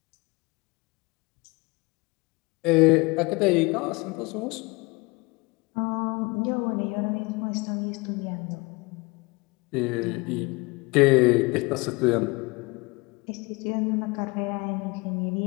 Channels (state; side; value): quieter; right; 26.0 dB